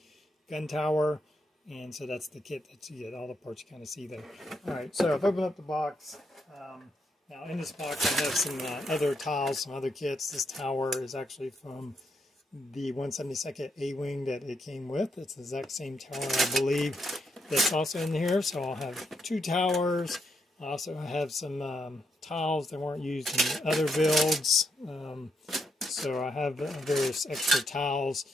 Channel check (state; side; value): normal; both; correlation 0.79